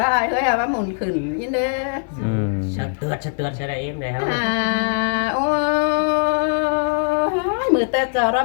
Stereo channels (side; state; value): right; silent; digital silence